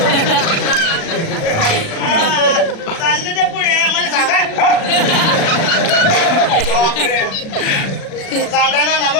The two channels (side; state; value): right; late; 36 ms